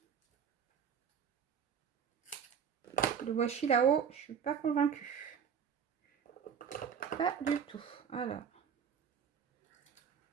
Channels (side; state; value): left; quieter; 7.5 dB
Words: Le washi là-haut, je suis pas convaincue. Pas du tout. Alors.